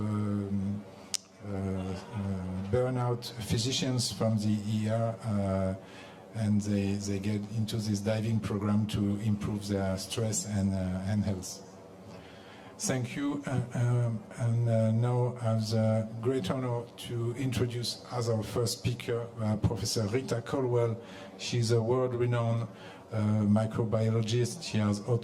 burnout physicians from the ER, and they get into this diving program to improve their stress and health. Thank you, and now I have the great honor to introduce as our first speaker Professor Rita Caldwell. She's a world-renowned microbiologist. She has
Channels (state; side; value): identical; both; correlation 1.00